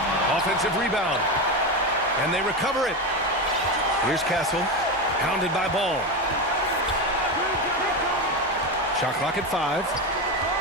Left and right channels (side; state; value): both; normal; correlation 0.16